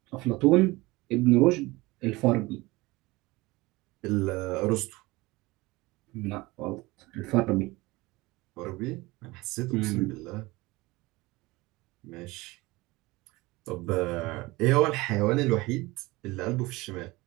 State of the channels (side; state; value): left; quieter; 21.5 dB